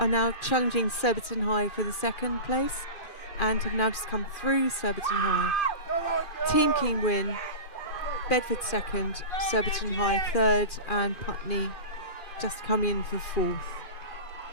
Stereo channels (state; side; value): late; right; 2.4 ms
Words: challenging Surbiton High for the second place, and have now just come through Surbiton High. Team Keene win, Bedford second, Surbiton High third, and Putney just come in for fourth.